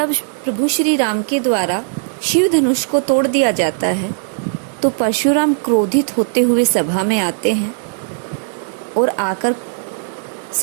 प्रभु श्री राम के द्वारा शिव धनुष को तोड़ दिया जाता है तो परशुराम क्रोधित होते हुए सभा में आते हैं और आकर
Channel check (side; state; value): left; silent; digital silence